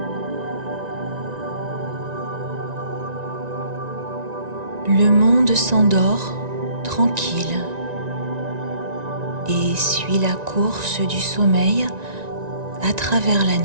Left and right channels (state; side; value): late; left; 1.9 ms